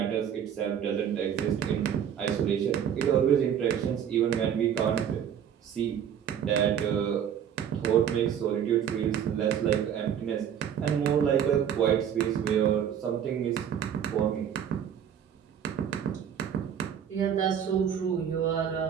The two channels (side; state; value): left; quieter; 8.9 dB